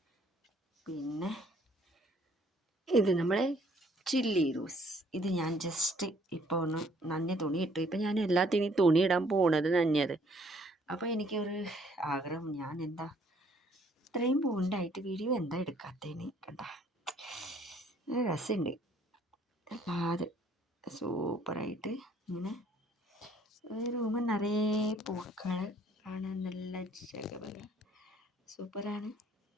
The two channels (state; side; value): normal; both; correlation 0.62